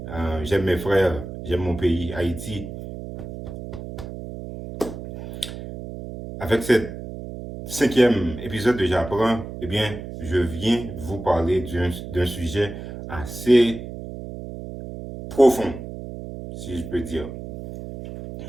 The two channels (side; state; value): right; noise; hum, 10 dB below the sound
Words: j'aime mes frères, j'aime mon pays, Haïti. Avec cet cinquième épisode de J'apprends, eh bien, je viens vous parler d'un sujet assez profond, si je peux dire.